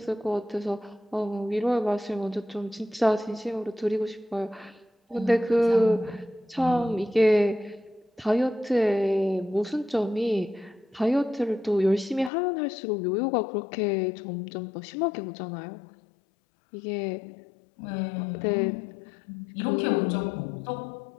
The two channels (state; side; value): drops out; right; at 12.3 s